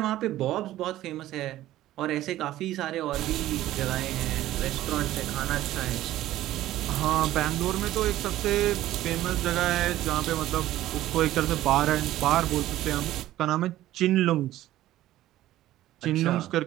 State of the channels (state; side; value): quieter; left; 14.5 dB